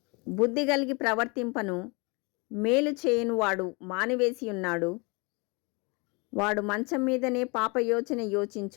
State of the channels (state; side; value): quieter; right; 29.6 dB